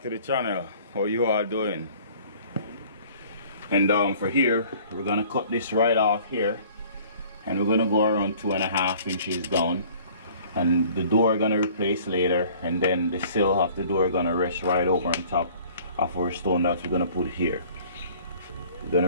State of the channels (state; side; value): inverted; both; correlation -0.51